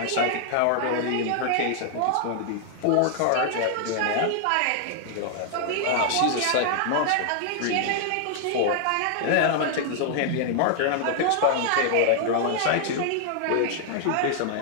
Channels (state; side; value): different; both; correlation 0.00